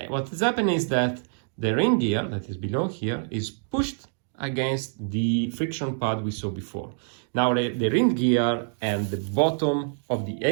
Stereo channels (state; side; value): silent; left; digital silence